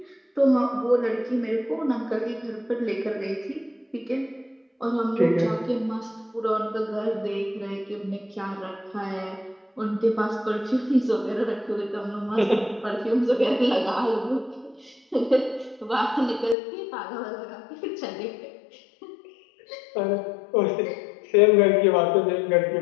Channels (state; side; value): drops out; right; at 16.6 s